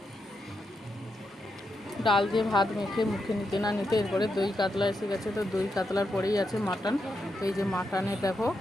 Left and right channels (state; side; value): normal; both; correlation 0.84